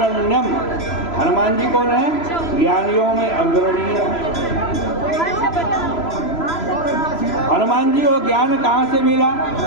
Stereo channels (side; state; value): right; late; 3.0 ms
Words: हनुमान जी कौन है? ज्ञानियों में अग्रणीय। हनुमान जी को ज्ञान कहाँ से मिला?